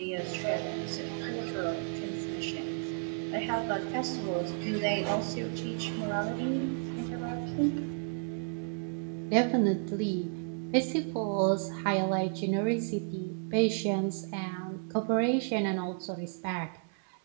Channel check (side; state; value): left; silent; 56 dB below the other